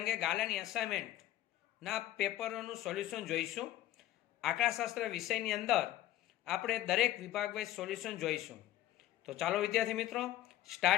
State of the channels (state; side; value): quieter; right; 13.9 dB